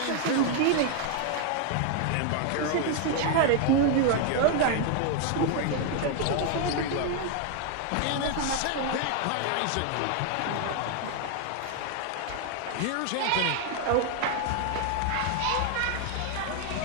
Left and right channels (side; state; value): both; different; correlation 0.00